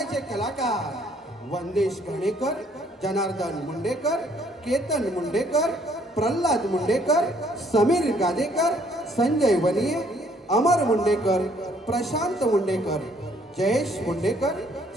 कलाकार वंदेश घाणेकर जनार्दन मुंडेकर केतन मुंडेकर प्रल्हाद मुंडेकर समीर गादेकर संजय वनिये अमर मुंडेकर प्रशांत मुंडेकर जयेश मुंडेकर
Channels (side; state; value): both; normal; correlation 0.64